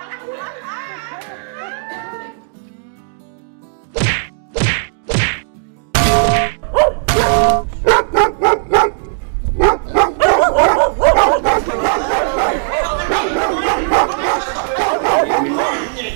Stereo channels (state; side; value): silent; left; digital silence